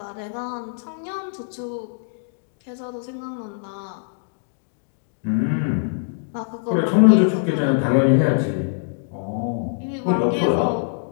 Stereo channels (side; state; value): right; silent; digital silence